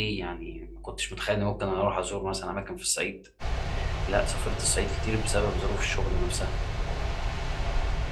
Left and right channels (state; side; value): identical; both; correlation 1.00